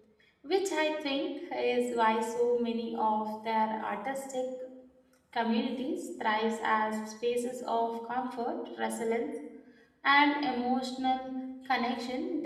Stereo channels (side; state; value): both; identical; correlation 1.00